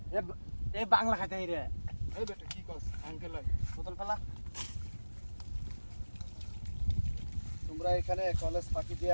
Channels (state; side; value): inverted; both; correlation -1.00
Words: এ বাংলা খাইতে রে। এই বেটা কি কস? আঙ্কেল বোতল ফেলা। তোমরা এখানে কলেজ ফাঁকি